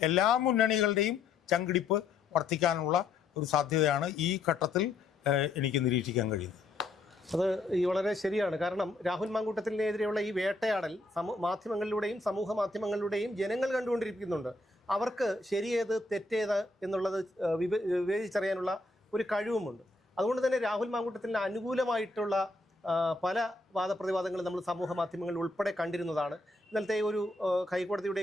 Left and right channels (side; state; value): right; quieter; 3.4 dB